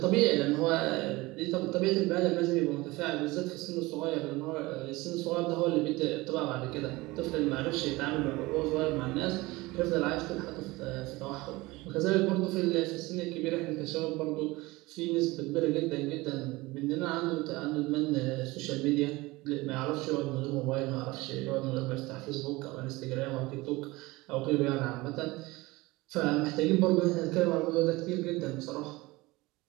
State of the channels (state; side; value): quieter; left; 21.3 dB